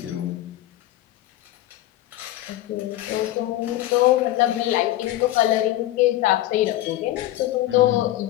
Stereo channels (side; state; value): right; quieter; 14.9 dB